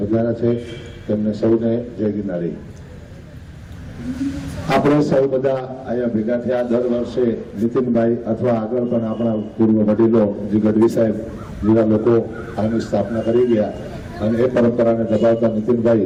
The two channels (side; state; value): both; identical; correlation 1.00